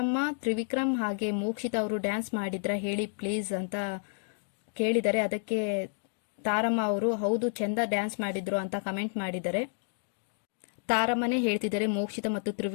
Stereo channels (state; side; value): silent; right; digital silence